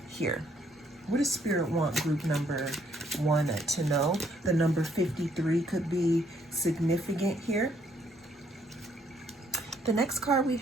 here. What does Spirit want group number 1 to know? The number 53 could be significant here. The next card we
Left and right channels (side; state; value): both; normal; correlation 0.69